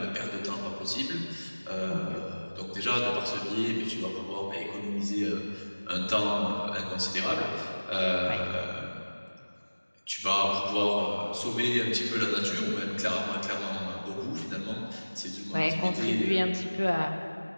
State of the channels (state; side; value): inverted; both; correlation -1.00